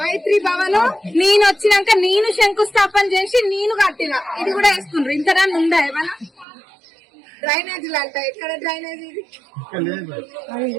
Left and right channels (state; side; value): drops out; left; at 6.5 s